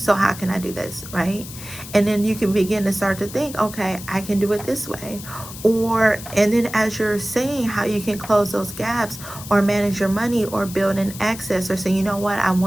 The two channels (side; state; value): left; noise; hiss, 13 dB below the sound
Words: how can I do this, right? And then you can begin to start to think, okay, I can do it this way. And then as you're saying how you can close those gaps or manage your money or build an excess or say, you know what, I